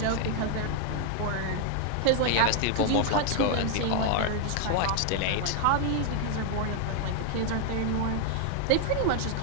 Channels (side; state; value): both; different; correlation 0.00